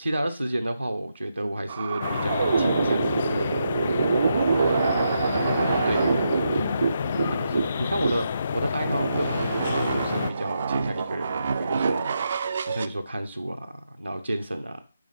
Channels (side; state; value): both; inverted; correlation -0.82